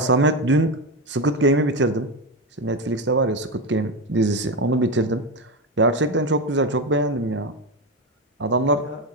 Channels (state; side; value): normal; both; correlation 0.14